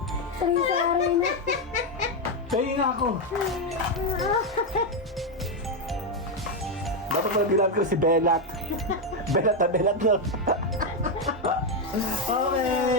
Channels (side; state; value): both; normal; correlation 0.05